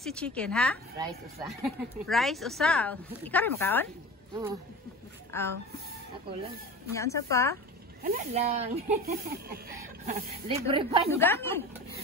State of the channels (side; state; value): both; normal; correlation 0.34